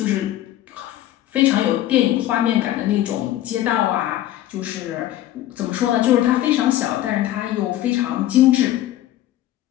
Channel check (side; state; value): right; quieter; 13.6 dB